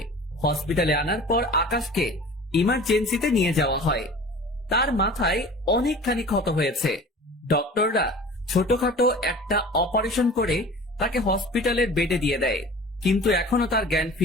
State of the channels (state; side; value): normal; both; correlation 0.41